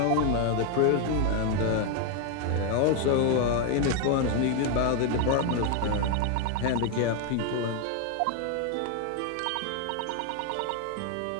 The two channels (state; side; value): different; both; correlation 0.01